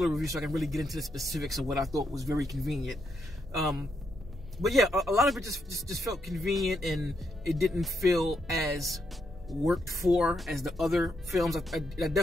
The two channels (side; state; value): both; normal; correlation 0.80